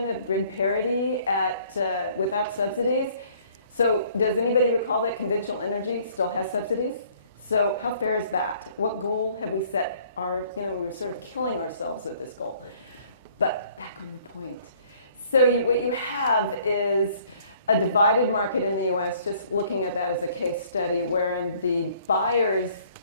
of grid parity at without subsidies. So, does anybody recall that conventional energy still has subsidies? So, how fair is that? What goal have we set? We were sort of killing ourselves with this goal. But back on the point. So, what you have is a divided market in the US, just looking at that as a case study, wherein the buyers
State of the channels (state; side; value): inverted; both; correlation -0.59